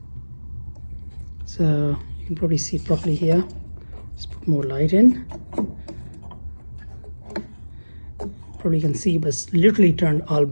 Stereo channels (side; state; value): both; inverted; correlation -1.00